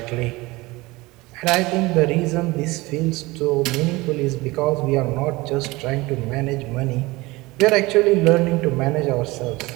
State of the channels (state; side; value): quieter; left; 21.7 dB